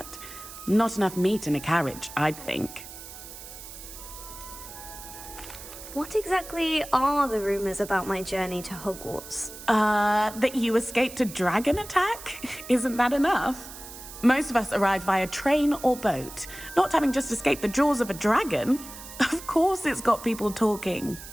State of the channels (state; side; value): noise; right; hiss, 14 dB below the sound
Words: Not enough meat in a carriage, I'd think. What exactly are the rumors about my journey to Hogwarts? That you escaped a dragon attack? Isn't that enough? Most of us arrive via train or boat, not having just escaped the jaws of a dragon. Of course it's got people talking.